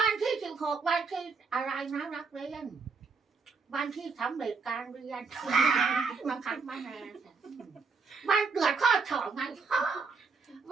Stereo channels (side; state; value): left; quieter; 4.8 dB